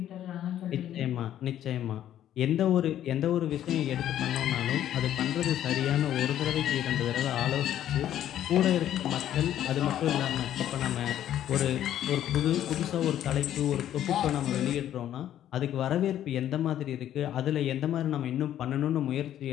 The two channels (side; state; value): right; quieter; 11.4 dB